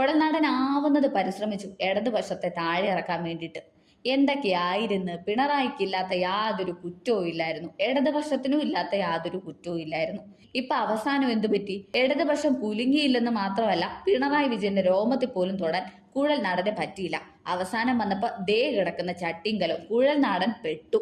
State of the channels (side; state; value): both; identical; correlation 1.00